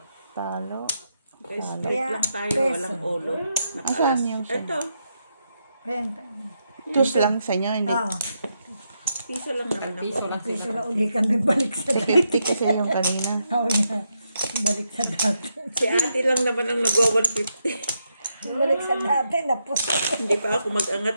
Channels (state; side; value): inverted; both; correlation -0.82